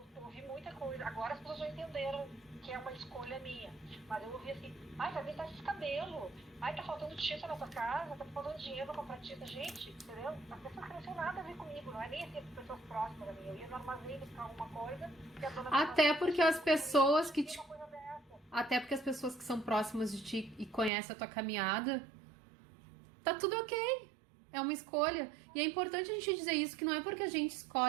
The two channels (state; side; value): drops out; left; at 20.9 s